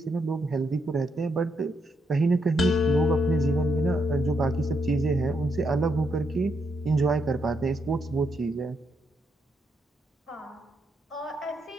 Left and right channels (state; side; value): normal; both; correlation 0.79